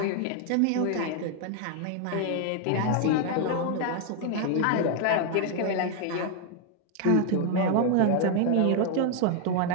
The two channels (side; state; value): both; different; correlation 0.00